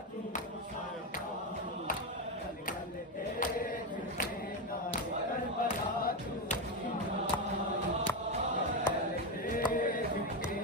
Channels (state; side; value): normal; both; correlation 0.11